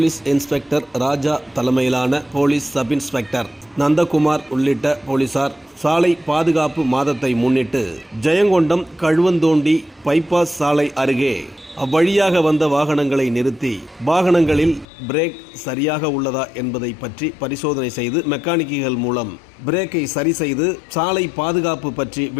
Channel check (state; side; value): drops out; right; at 14.9 s